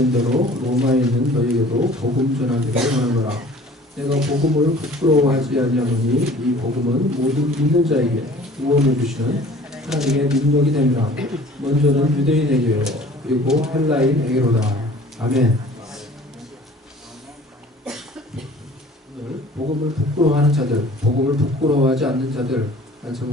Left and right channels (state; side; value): normal; both; correlation 0.48